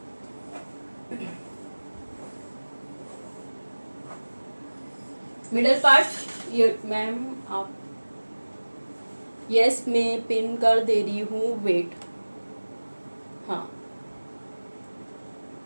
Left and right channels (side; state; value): both; inverted; correlation -1.00